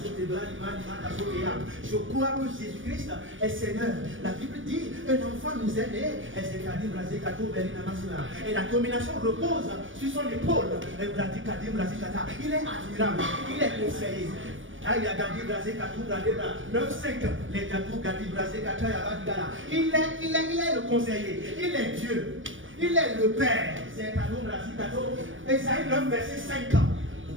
ce débat je crois que Jésus-Christ est Seigneur. La Bible dit un enfant nous est né. Et c'est cadim brasi catou balé na machika. Et la domination repose sur son épaule. Et brasi cadim brasi cata. Il est admirable. Il est conseillé. Aïe, Gadi Brasé Katou Bradera 9-5, les Katou Gadi Brasé Katou Yabadgala. Il est le conseiller, il est Dieu, il est le Père. C'est Katou Brasé Katou. Esaïe 9, verset 5.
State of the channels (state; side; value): late; left; 0.57 ms